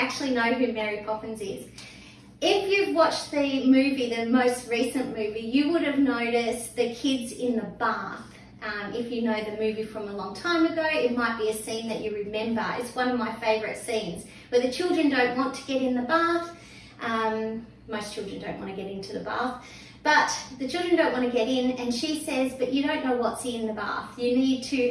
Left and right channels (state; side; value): identical; both; correlation 1.00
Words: know who Mary Poppins is. If you've watched the movie, the most recent movie, you would have noticed the kids in the bath. If you know the movie from a long time ago, it might be a scene that you remember. It's one of my favourite scenes where the children don't want to get in the bath. Most children don't want to get into the bath, but the children don't want to get in, and she says, but you don't know what's in the bath. You need